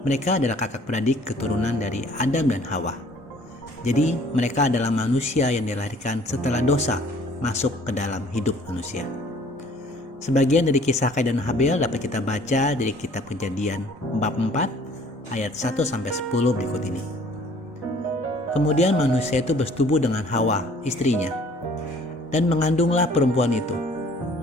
Mereka adalah kakak beradik keturunan dari Adam dan Hawa. Jadi mereka adalah manusia yang dilahirkan setelah dosa masuk ke dalam hidup manusia. Sebagian dari kisah Kain dan Habel dapat kita baca dari kitab Kejadian bab 4 ayat 1-10 berikut ini. Kemudian manusia itu bersetubuh dengan Hawa, istrinya, dan mengandunglah perempuan itu,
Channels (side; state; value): both; normal; correlation 0.55